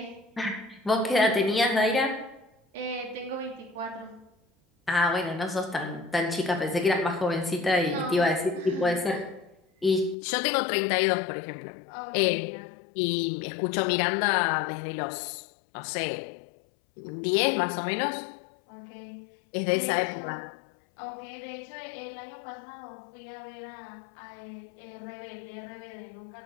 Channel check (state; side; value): drops out; right; at 10.2 s